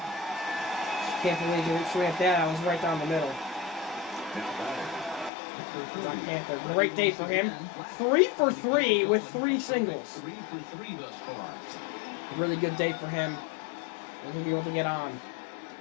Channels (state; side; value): drops out; right; at 5.3 s